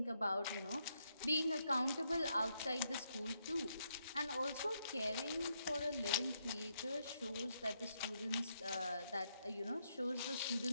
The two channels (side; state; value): both; inverted; correlation -0.78